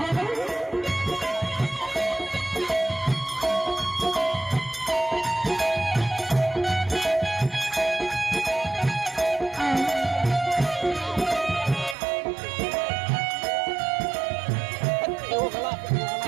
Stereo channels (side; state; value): left; drops out; at 12.0 s